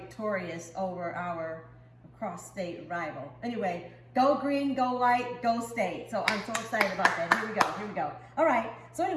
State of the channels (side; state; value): both; identical; correlation 1.00